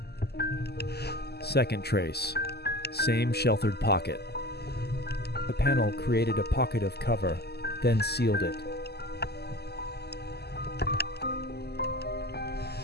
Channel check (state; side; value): late; right; 0.47 ms